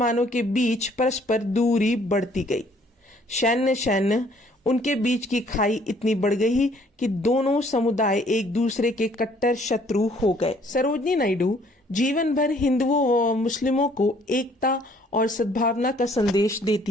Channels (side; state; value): both; normal; correlation 0.61